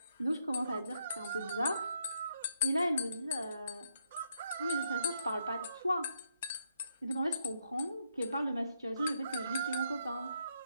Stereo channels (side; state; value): both; inverted; correlation -0.76